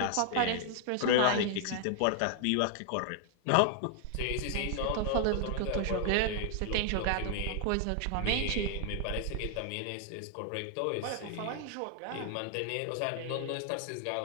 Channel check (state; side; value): different; both; correlation 0.00